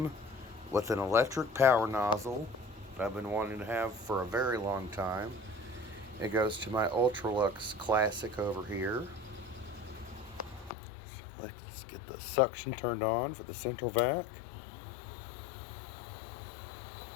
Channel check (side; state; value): right; drops out; at 10.7 s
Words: with an electric power nozzle that I've been wanting to have for a very long time. It goes to my Electrolux Classic over here. So let's get the suction turned on for the central vac.